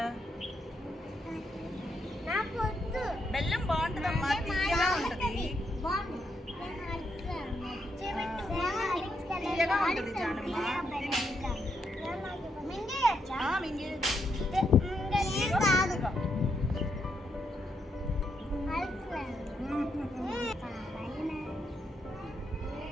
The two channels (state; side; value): normal; both; correlation 0.79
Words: బెల్లం బాగుంటుందమ్మా, తీయగా ఉంటుంది. తీయగా ఉంటుంది జానమ్మ.